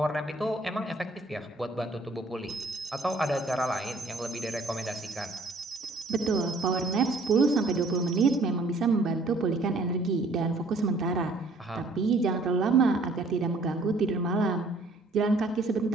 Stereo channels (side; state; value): left; quieter; 3.1 dB